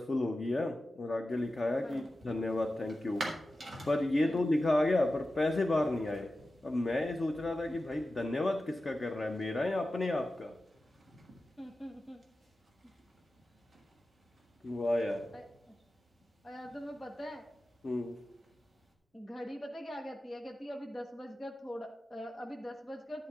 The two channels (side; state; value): both; normal; correlation 0.94